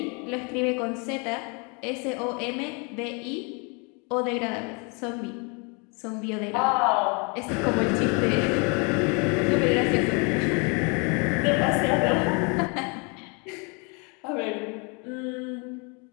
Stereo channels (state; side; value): quieter; right; 33.1 dB